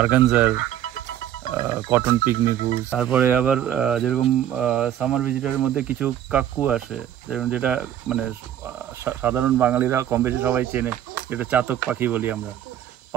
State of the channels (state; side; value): quieter; left; 11.1 dB